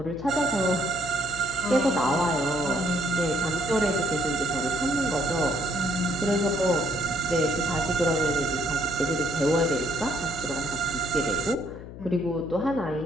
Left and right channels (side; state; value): left; noise; hum, 13 dB below the sound